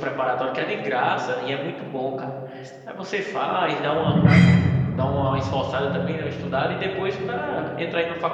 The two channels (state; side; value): identical; both; correlation 1.00